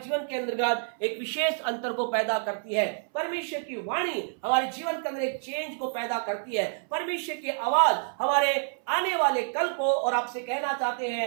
के अंतर्गत एक विशेष अंतर को पैदा करती है। परमेश्वर की वाणी हमारे जीवन के अंदर एक चेंज को पैदा करती है। परमेश्वर की आवाज हमारे आने वाले कल को, और आपसे कहना चाहते हैं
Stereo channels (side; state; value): left; silent; 59 dB below the other